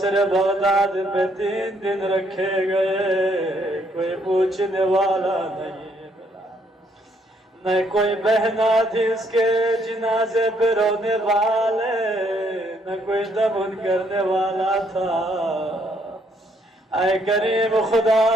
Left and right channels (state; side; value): normal; both; correlation 0.69